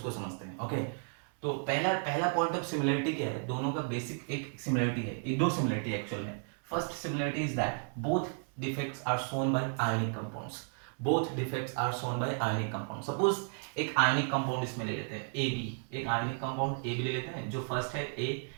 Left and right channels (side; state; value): left; silent; 55 dB below the other